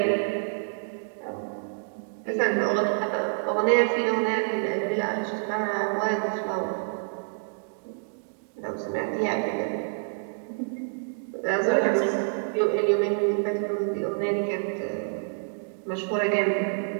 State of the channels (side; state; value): left; silent; digital silence